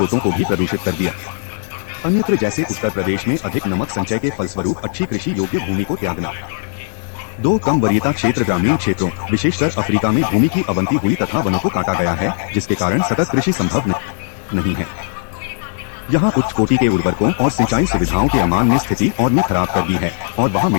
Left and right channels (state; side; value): silent; right; 58 dB below the other